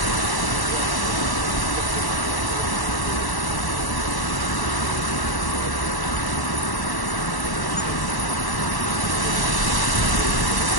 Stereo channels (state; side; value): late; right; 1.1 ms